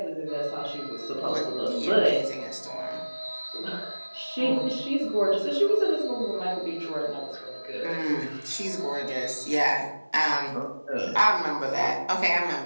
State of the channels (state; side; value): inverted; both; correlation -1.00